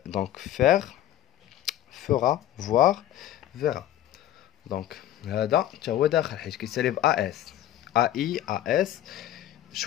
Donc faire, fera, voir, verra. Donc هذا حتى هو داخل حيت كيسالي ب AS. AI, AS.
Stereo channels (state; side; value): quieter; right; 12.6 dB